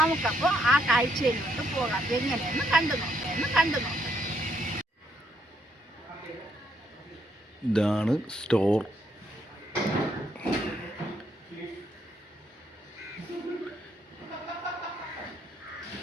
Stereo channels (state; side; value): normal; both; correlation 0.73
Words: ആ കാഴ്ചയിലോട്ട് പോകാം. എങ്ങനെയെന്ന് കണ്ടു നോക്കാം. ഇതാണ് സ്റ്റോർ.